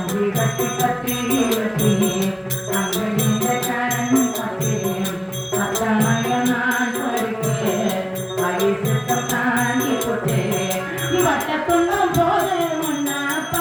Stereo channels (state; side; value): identical; both; correlation 1.00